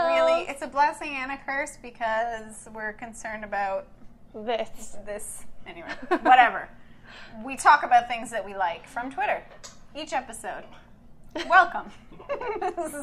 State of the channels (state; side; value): identical; both; correlation 1.00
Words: it's a blessing and a curse because we're concerned about this. Anyway, whatever. We talk about things that we like from Twitter each episode. Welcome. This